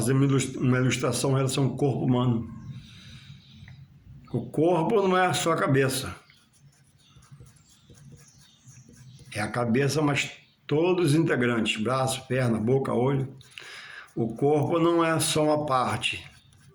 uma ilustração em relação ao corpo humano. O corpo não é só a cabeça. É a cabeça, mas todos os integrantes, braço, perna, boca, olho. O corpo não é só uma parte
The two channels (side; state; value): both; identical; correlation 1.00